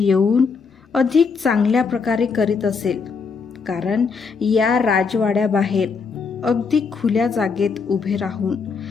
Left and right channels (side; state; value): right; quieter; 5.2 dB